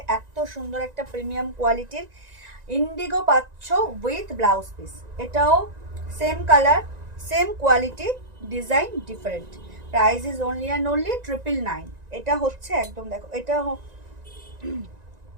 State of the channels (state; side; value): late; left; 1.9 ms